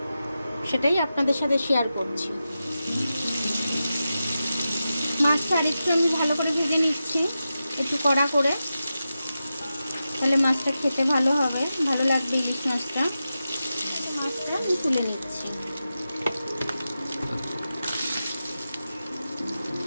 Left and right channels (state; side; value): inverted; both; correlation -0.91